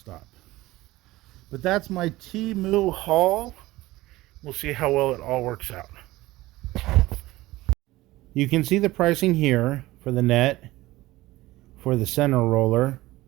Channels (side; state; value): left; quieter; 18.2 dB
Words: But that's my TEMU haul. We'll see how well it all works out. You can see the pricing here for the net, for the center roller,